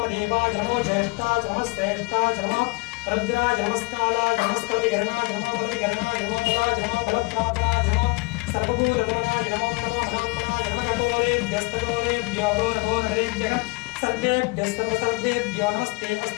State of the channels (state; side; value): quieter; right; 25.9 dB